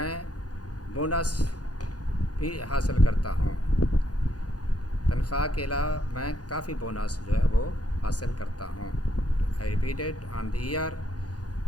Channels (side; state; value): right; late; 0.68 ms